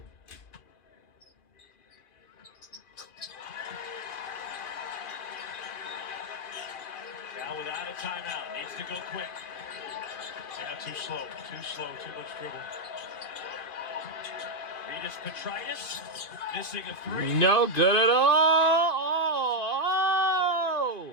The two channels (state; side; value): late; right; 2.5 ms